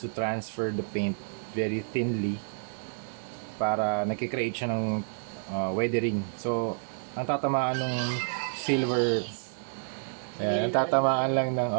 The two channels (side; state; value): left; silent; 58 dB below the other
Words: to transfer the paint very thinly para nakikreate siya ng weathering. So, ang tatamaan ng silver ang tatamaan lang ng